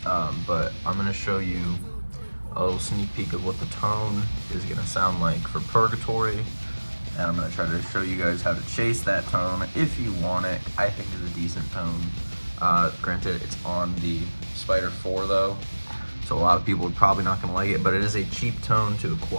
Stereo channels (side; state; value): both; inverted; correlation -1.00